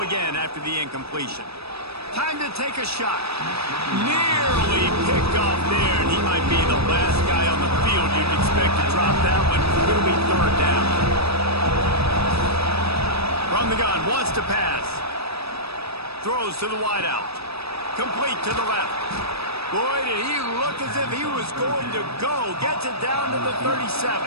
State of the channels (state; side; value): late; left; 0.78 ms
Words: again after the incompletion. Time to take a shot. Nearly picked off there, and he might be the last guy on the field you'd expect to drop that one. It'll be third down. From the gun, wants to pass. Throws to the wideout. Complete to the left. Boy, did he look as if he was going to go. Gets it down to the 37.